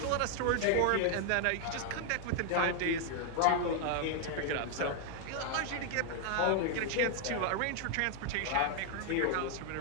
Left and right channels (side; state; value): both; different; correlation 0.00